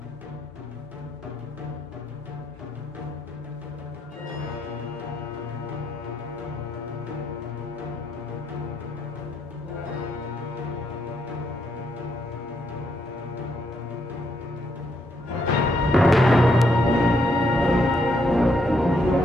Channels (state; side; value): normal; both; correlation 0.76